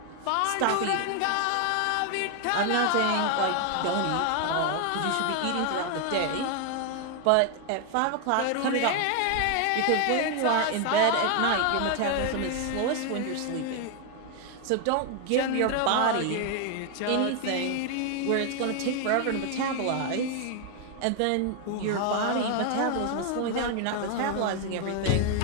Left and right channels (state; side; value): different; both; correlation 0.00